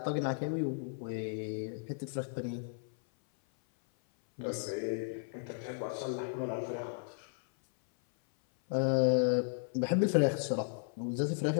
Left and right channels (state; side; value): silent; right; 55 dB below the other